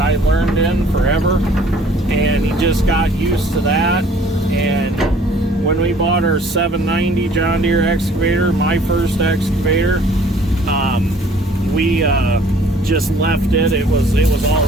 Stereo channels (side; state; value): both; normal; correlation 0.55